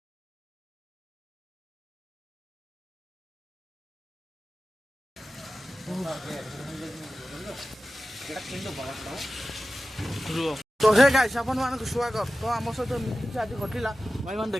तो हे गाइस आपण मानक स्वागत। तो आम सहित एमती आज घटला भाई मैंने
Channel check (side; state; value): both; normal; correlation 0.95